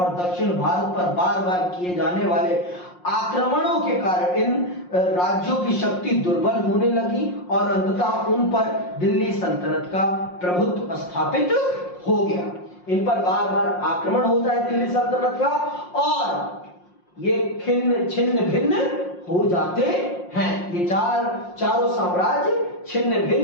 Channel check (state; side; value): late; right; 5.6 ms